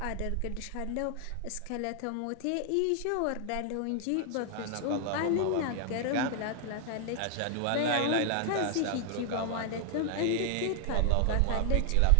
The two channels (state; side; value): different; both; correlation 0.00